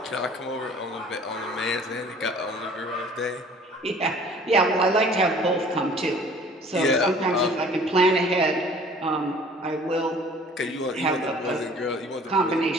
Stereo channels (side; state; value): both; normal; correlation 0.51